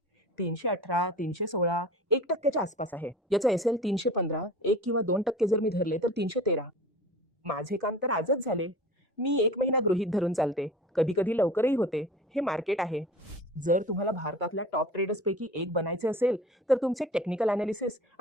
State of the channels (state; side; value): normal; both; correlation 0.39